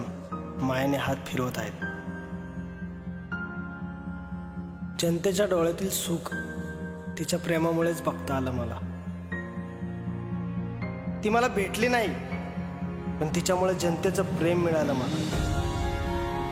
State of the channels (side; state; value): both; identical; correlation 1.00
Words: मायेने हात फिरवत आहेत. जनतेच्या डोळ्यातील सुख तिच्या प्रेमामुळेच बघता आलं मला. ती मला भेटली नाही, पण तिच्यामुळे जनतेचं प्रेम मिळालं मला.